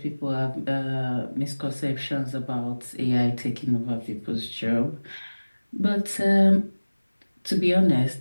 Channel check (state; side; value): inverted; both; correlation -1.00